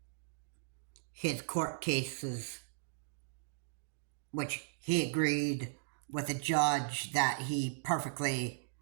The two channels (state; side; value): silent; left; digital silence